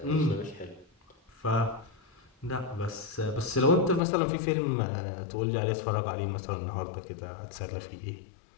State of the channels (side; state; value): right; drops out; at 4.0 s